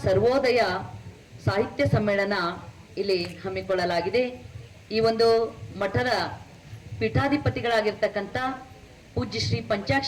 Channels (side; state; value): both; identical; correlation 1.00